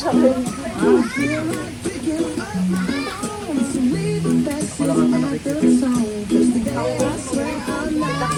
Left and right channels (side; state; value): both; identical; correlation 1.00